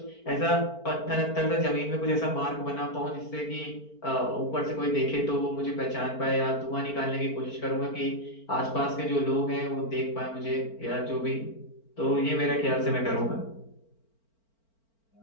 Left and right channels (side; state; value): right; late; 4.4 ms